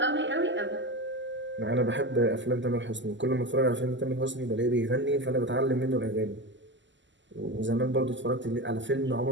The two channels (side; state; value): left; late; 0.54 ms